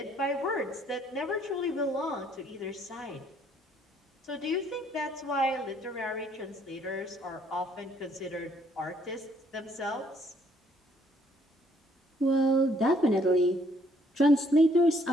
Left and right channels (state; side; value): normal; both; correlation 0.65